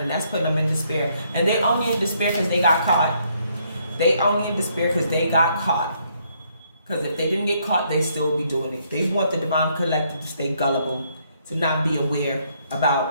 and that's putting them in despair. And they only in despair because they got caught. They only in despair because they got caught. Because if they didn't get caught, they still be doing it. They want the divine collective to stay gullible, to not be aware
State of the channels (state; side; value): inverted; both; correlation -0.71